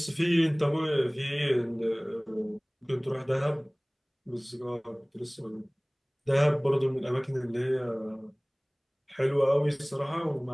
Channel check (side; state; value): both; identical; correlation 1.00